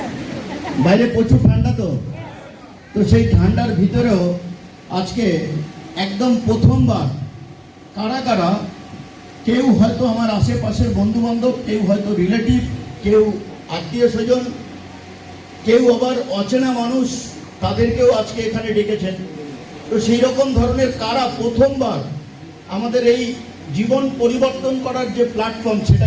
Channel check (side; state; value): both; identical; correlation 1.00